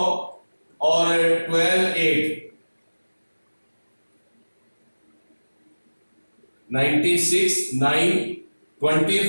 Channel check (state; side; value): inverted; both; correlation -1.00